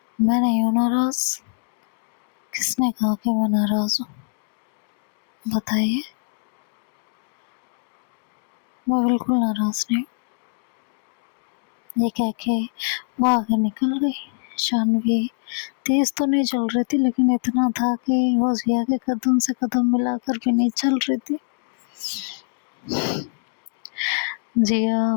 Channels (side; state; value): right; silent; digital silence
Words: मैं नहीं हूं नाराज। किसने कहा कि मैं नाराज हूं? बताइए। मैं बिल्कुल नाराज नहीं। ये कह के वो आगे निकल गई। शानवी तेज तो नहीं चल रही थी, लेकिन इतना था कि वो जिया के कदम से कदम मिलाकर भी नहीं चल रही थी।